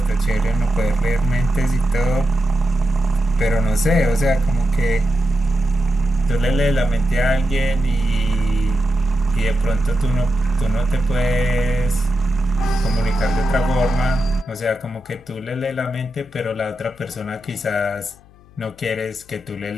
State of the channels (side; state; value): left; noise; hum, 26 dB below the sound